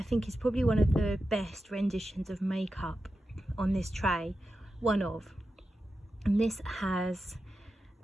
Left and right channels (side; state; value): both; normal; correlation 0.91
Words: think is probably one of the best renditions of makeup on this tray, one of. And this has